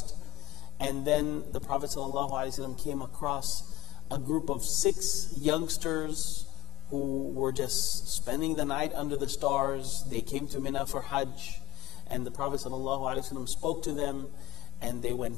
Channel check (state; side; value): quieter; right; 18.4 dB